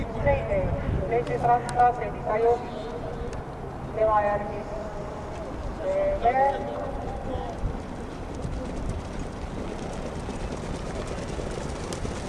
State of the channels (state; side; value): identical; both; correlation 1.00